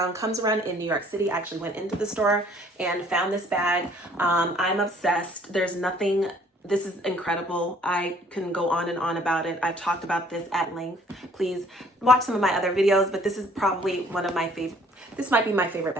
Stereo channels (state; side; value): normal; both; correlation 0.58